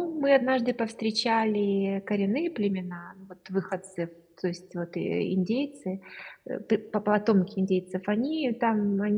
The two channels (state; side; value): identical; both; correlation 1.00